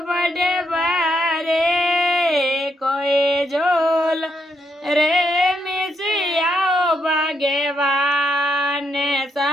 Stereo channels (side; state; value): both; normal; correlation 0.78